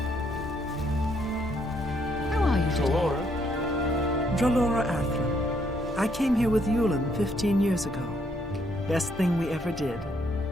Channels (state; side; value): normal; both; correlation 0.71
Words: Dralora Athra. I came here with Yulin 15 years ago. Best thing we ever did.